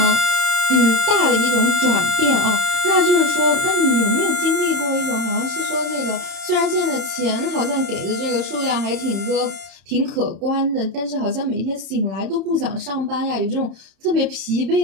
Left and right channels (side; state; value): left; late; 31 ms